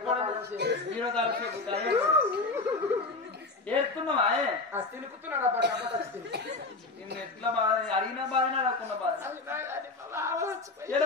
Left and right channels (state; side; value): quieter; right; 3.6 dB